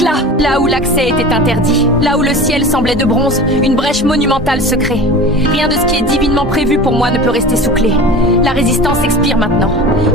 Là où l'accès était interdit, là où le ciel semblait de bronze, une brèche monumentale se crée. Rien de ce qui est divinement prévu pour moi ne peut rester sous clé. La résistance expire maintenant.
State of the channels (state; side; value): normal; both; correlation 0.36